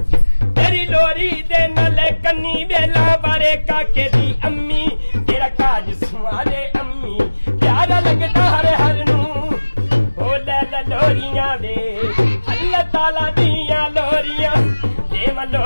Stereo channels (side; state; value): both; inverted; correlation -1.00